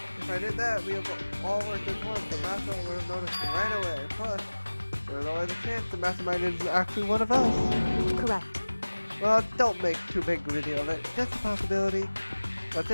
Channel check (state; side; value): inverted; both; correlation -1.00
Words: If I did that, we have all worked as one. The mastermind would have noticed right away. Plus, there's always a chance the mastermind is actually one of us. Correct. Well, don't make too big a deal of it. Just a possibility. But